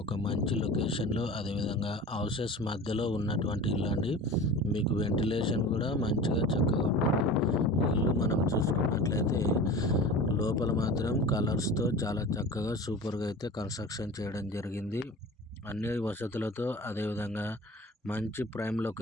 ఒక మంచి లొకేషన్లో, అదేవిధంగా హౌసెస్ మధ్యలో ఉన్నటువంటి ఇల్లు అండి. మీకు వెంటిలేషన్ కూడా మంచిగా చక్కగా ఉంటుంది. ఈ ఇల్లు మనం చూసుకున్నట్లయితే లోపల మాత్రం కలర్స్తో చాలా చక్కగా సూపర్గా అయితే కన్స్ట్రక్షన్ చేయడం జరిగింది. అన్ని వసతులతో, అదేవిధంగా మంచి ప్రైమ్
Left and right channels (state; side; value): normal; both; correlation 0.36